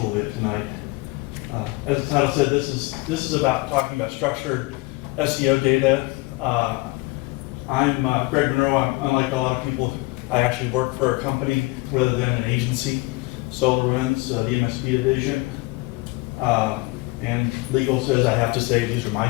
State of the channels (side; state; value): right; quieter; 23.6 dB